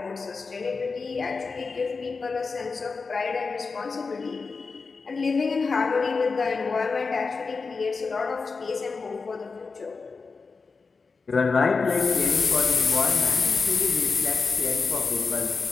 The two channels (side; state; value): right; quieter; 4.5 dB